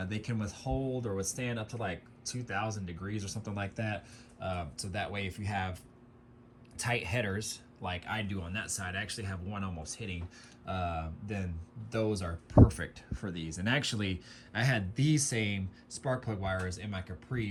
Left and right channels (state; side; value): identical; both; correlation 1.00